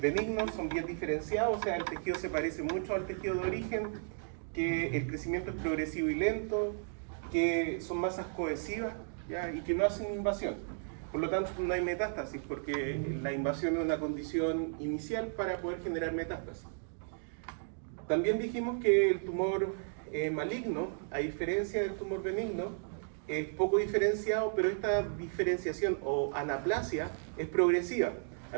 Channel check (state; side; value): silent; left; digital silence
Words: son bien diferenciados, o sea, el tejido se parece mucho al tejido de origen, que el crecimiento es progresivo y lento, que son masas cohesivas, ¿ya? Y que no hacen invasión. Por lo tanto, no hay metástasis, porque la invasión es una condición inicial para poder generar metástasis. También dijimos que el tumor maligno, a diferencia del tumor benigno, es poco diferenciado, pero esta diferenciación o anaplasia es progresiva.